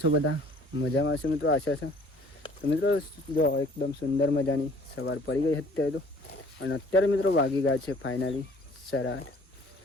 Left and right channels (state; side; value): normal; both; correlation 0.54